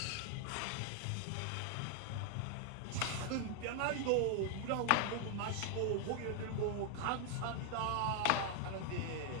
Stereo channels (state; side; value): different; both; correlation 0.00